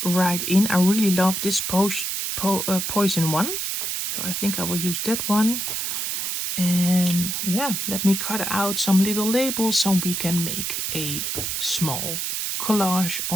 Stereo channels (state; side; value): noise; right; hiss, 2 dB below the sound